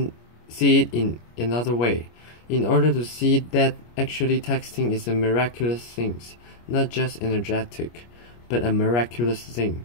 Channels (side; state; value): right; late; 25 ms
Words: it in another way, in order to see that actually texting is a miraculous thing, not just energetic, but a miraculous thing,